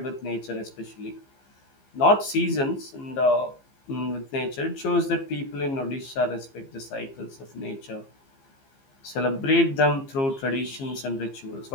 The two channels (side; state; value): right; late; 15 ms